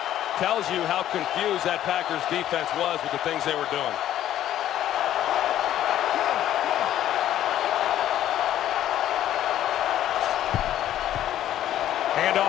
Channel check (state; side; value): quieter; right; 12.0 dB